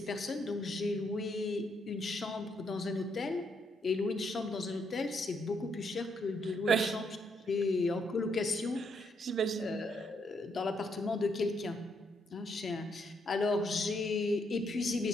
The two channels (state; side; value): normal; both; correlation 0.75